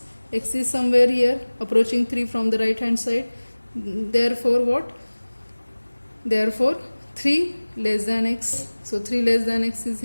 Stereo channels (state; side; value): inverted; both; correlation -1.00